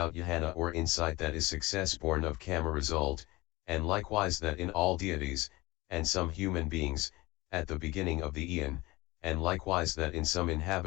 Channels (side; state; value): right; quieter; 21.1 dB